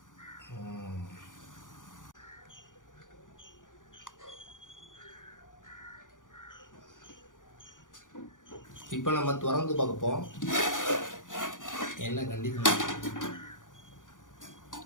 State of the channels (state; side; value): late; right; 0.88 ms